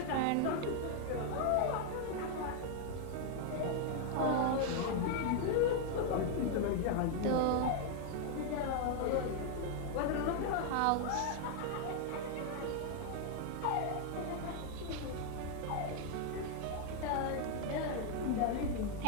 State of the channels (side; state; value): both; different; correlation 0.00